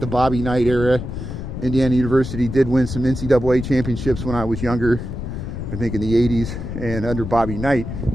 Bobby Knight era. Indiana University did win some NCAA championships when I was younger, I think in the 80s, and under Bobby Knight.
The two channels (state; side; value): noise; left; rumble, 7 dB below the sound